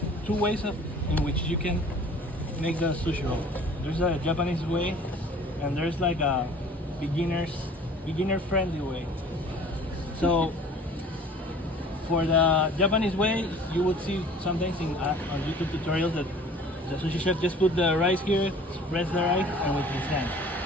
2 ways in which you can make the sushi roll. There's a Japanese way, and there's like a beginner friendly way. So for the Japanese way, you would see sometimes on YouTube tutorials that the sushi chef just put the rice here, spreads the rice, and with his hands,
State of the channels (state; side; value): normal; both; correlation 0.48